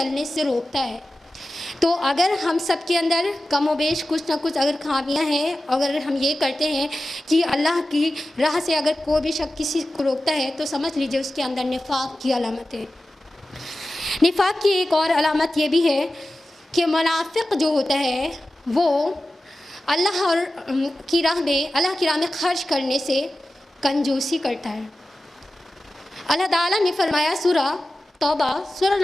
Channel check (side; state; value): both; normal; correlation 0.94